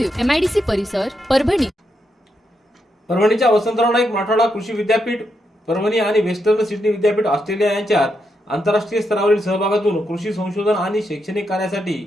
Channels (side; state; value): both; normal; correlation 0.82